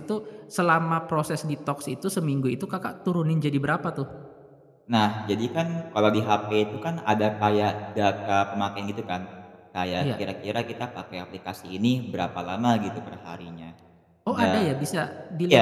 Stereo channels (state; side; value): identical; both; correlation 1.00